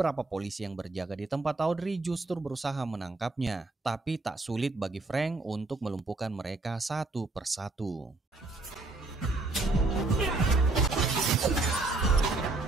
polisi yang berjaga di tempat Audrey justru berusaha menangkapnya. Tapi tak sulit bagi Frank untuk melumpuhkan mereka satu persatu.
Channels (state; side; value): quieter; left; 3.2 dB